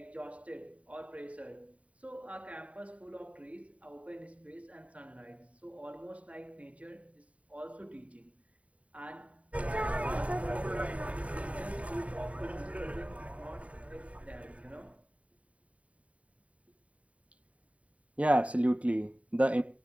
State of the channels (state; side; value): late; left; 0.066 ms